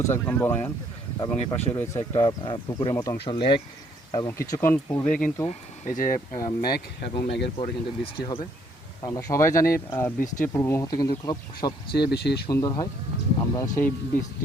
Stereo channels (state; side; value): normal; both; correlation 0.66